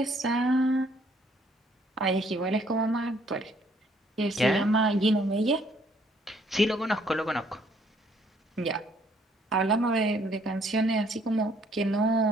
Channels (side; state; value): both; normal; correlation 0.65